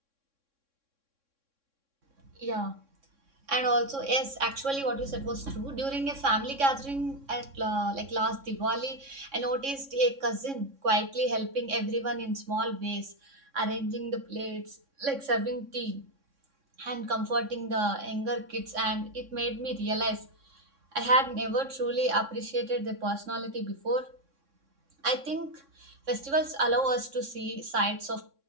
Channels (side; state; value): left; late; 3.6 ms